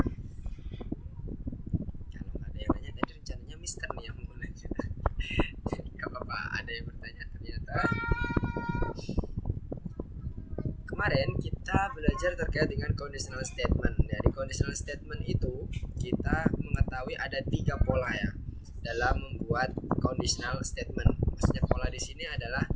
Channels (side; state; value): both; identical; correlation 1.00